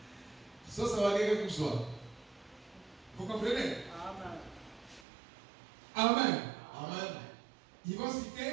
Vous comprenez? Amen. Amen. Ils vont citer.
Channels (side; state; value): left; drops out; at 5.1 s